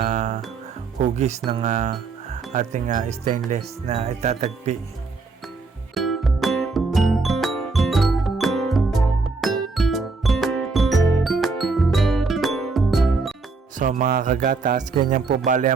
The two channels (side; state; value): left; quieter; 4.1 dB